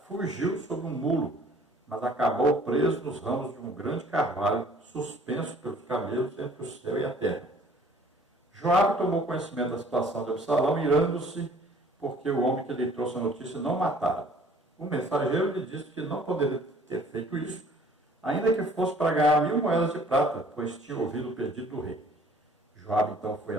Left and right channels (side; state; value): both; normal; correlation 0.54